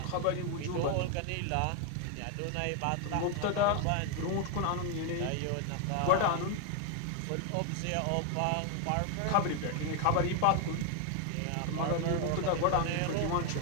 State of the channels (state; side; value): different; both; correlation 0.01